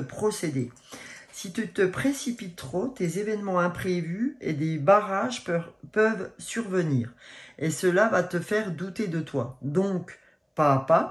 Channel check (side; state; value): both; identical; correlation 1.00